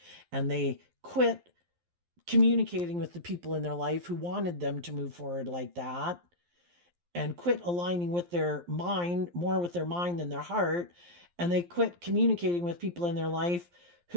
And they quit communicating with the people in their life who wanted them to move forward like that, and quit aligning with their mind, more with their mind than their heart. And they quit communicating with people in their life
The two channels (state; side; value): late; left; 11 ms